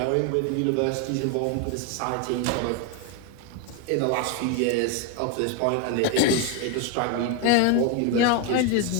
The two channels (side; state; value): both; different; correlation 0.01